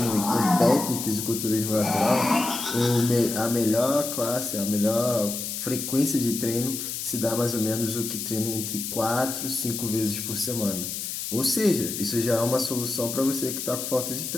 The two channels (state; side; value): noise; left; hiss, 5 dB below the sound